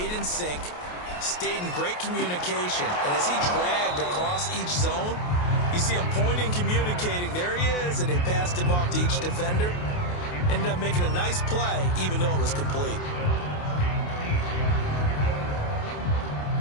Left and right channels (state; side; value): late; right; 28 ms